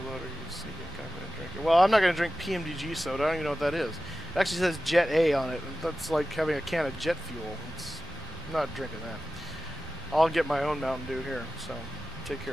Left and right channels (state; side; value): normal; both; correlation 0.94